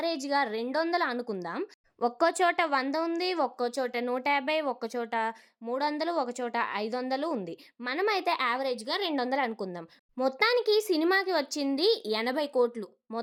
200 అనుకుందాం. ఒక్కో చోట 100 ఉంది, ఒక్కో చోట 150, ఒక్క చోట 300, ఒక చోట 500 ఉంది. మనమైతే యావరేజ్‌గా 200 అనుకుందాం. మొత్తానికి సినిమాకి వచ్చింది 80 కోట్లు.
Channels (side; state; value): both; identical; correlation 1.00